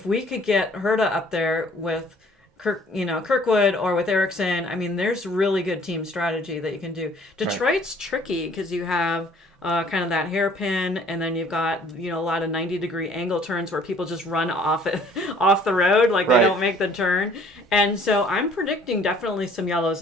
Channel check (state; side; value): normal; both; correlation 0.56